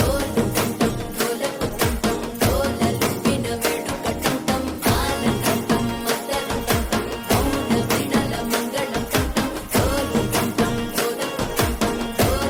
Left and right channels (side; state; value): both; identical; correlation 1.00